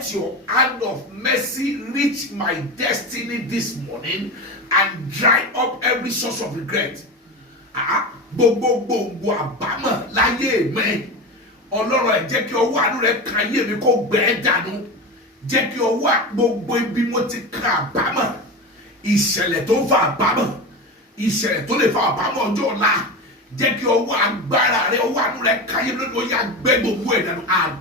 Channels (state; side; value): normal; both; correlation 0.24